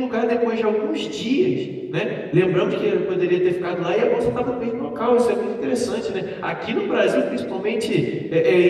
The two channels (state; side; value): identical; both; correlation 1.00